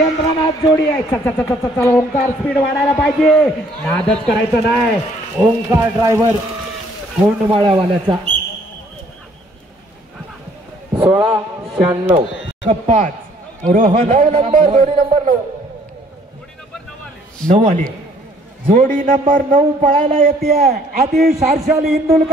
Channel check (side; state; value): both; normal; correlation 0.61